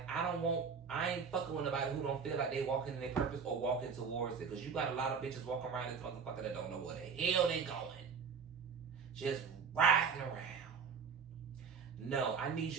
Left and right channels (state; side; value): quieter; left; 6.0 dB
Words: I ain't fucking with nobody who don't feel like they walking in their purpose or walking towards it. Because you got a lot of bitches walking around this motherfucker that don't know where the hell they going. Just riding around. No, I need